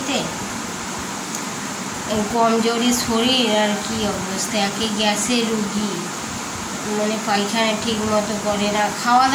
কমজোরি শরীর, আর কি অবস্থা, একে গ্যাসের রুগী, মানে পায়খানা ঠিক মতো করে না, খাওয়া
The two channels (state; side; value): identical; both; correlation 1.00